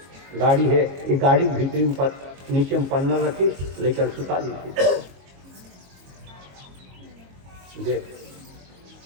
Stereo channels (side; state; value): left; late; 22 ms